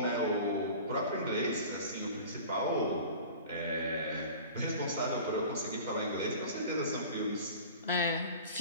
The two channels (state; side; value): inverted; both; correlation -0.40